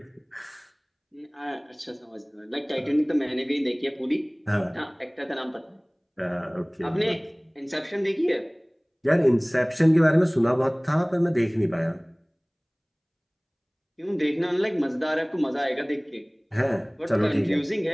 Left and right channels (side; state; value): both; identical; correlation 1.00